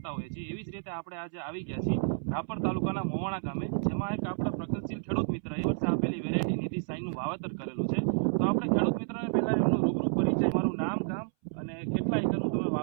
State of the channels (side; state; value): left; silent; 57 dB below the other